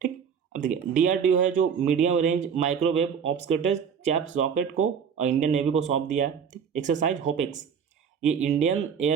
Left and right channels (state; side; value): quieter; left; 7.1 dB